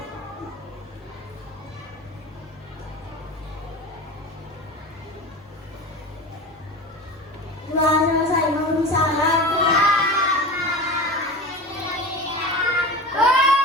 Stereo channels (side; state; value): both; normal; correlation 0.31